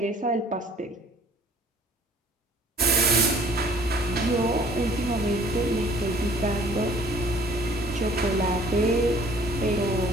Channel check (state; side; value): normal; both; correlation 0.55